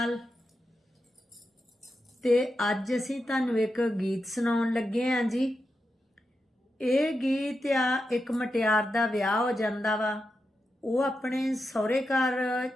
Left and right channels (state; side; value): normal; both; correlation 0.88